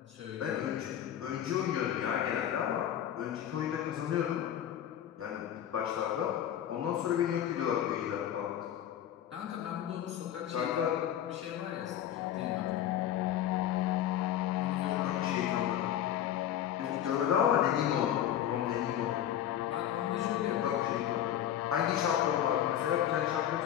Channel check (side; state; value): right; quieter; 10.9 dB